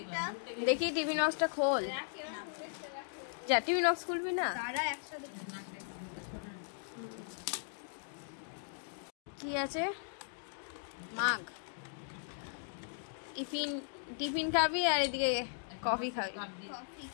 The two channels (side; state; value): right; silent; digital silence